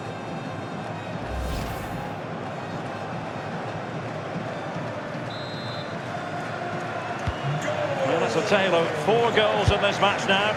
Well, that's a tale of 4 goals in this match now.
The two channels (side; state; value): both; identical; correlation 1.00